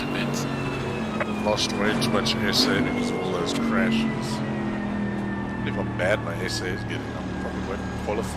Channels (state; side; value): identical; both; correlation 1.00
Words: pits. Lost way too much SA because of all those crashes. If how bad my SA is getting, I probably won't